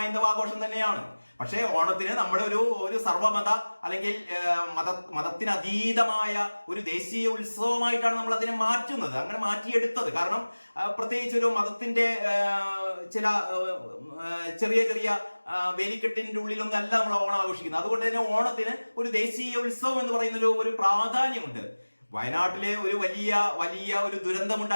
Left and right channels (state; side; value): inverted; both; correlation -1.00